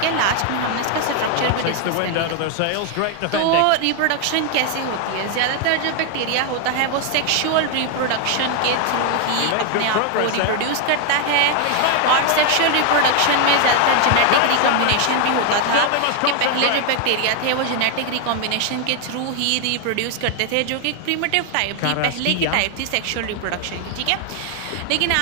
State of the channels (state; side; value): different; both; correlation 0.00